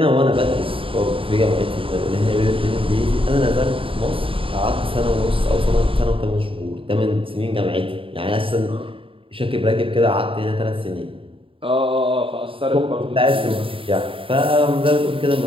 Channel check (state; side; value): late; left; 0.26 ms